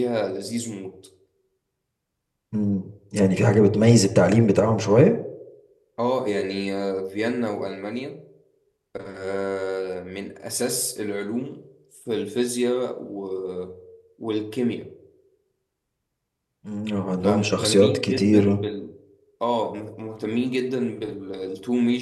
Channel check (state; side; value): identical; both; correlation 1.00